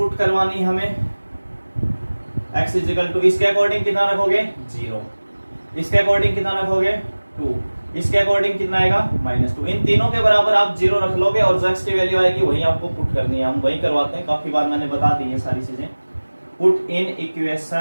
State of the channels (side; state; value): both; inverted; correlation -1.00